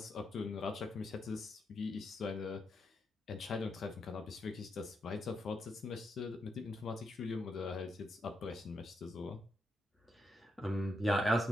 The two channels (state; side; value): normal; both; correlation 0.82